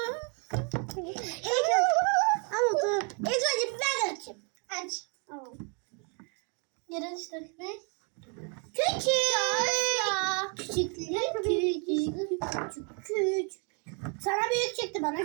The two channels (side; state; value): left; quieter; 36.7 dB